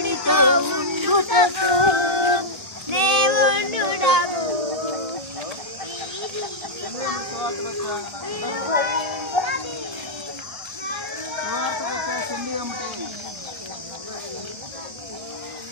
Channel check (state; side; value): late; left; 1.3 ms